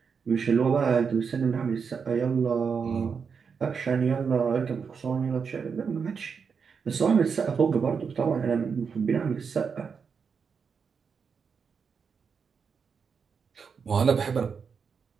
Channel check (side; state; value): left; quieter; 6.0 dB